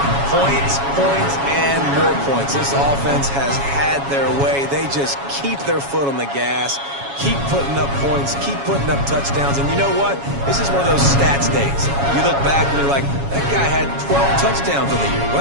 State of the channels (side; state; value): left; late; 7.2 ms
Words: Points, points, and more points. This offense has had their way. They just keep their foot on the gas, keep putting up points, keep putting up touchdowns. And you know what? This is one of those stats days. You look back and you're like, that guy had 12 touchdowns on the year.